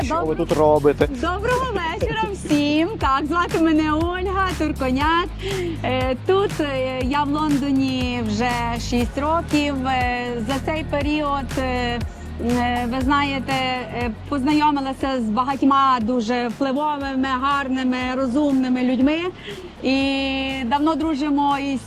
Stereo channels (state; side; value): identical; both; correlation 1.00